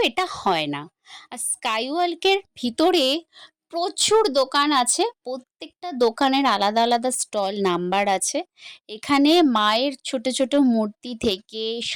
এটা হয় না। আর স্কাইওয়ার্ল্ডের ভিতরে প্রচুর দোকান আছে, প্রত্যেকটা দোকানের আলাদা আলাদা স্টল নাম্বার আছে। এখানে মায়ের ছোট ছোট মূর্তি থেকে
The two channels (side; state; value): both; identical; correlation 1.00